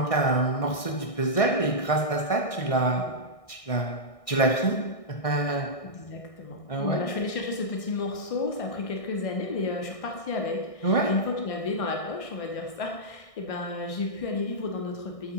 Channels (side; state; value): right; late; 1.6 ms